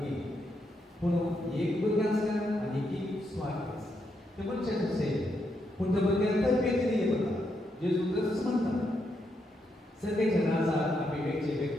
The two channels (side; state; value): both; normal; correlation 0.80